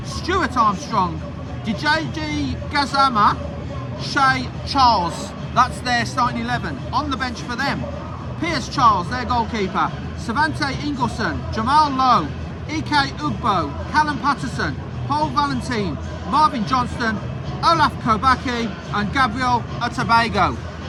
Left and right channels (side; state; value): both; identical; correlation 1.00